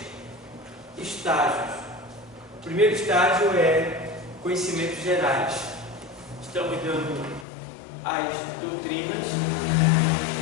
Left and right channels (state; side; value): drops out; right; at 7.5 s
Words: estágios. O primeiro estágio é conhecimentos gerais. Estamos dando as doutrinas